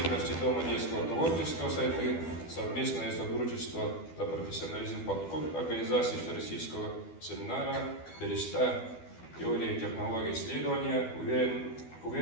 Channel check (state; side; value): late; right; 12 ms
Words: Дома детского творчества «Сайды» совместное сотрудничество за профессионализм подход организации Всероссийского семинара «Береста. Теория и технологии исследования».